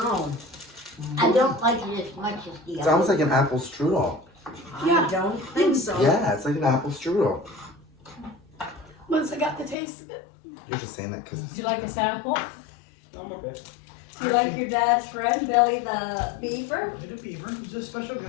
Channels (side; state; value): right; drops out; at 9.8 s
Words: I don't like it as much as the It other. sounds like an apple strudel. I don't think so. Yeah, it's like an apple strudel. Once I got the taste of it. You're just saying that because Do you like a sample? I'm okay. Do you like your dad's friend, Billy the Beaver? Billy the Beaver. He's a special